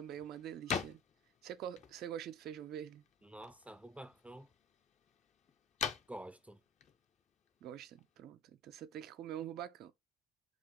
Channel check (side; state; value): both; normal; correlation 0.37